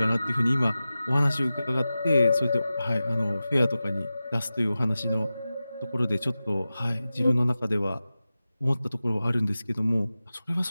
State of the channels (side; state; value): both; inverted; correlation -0.95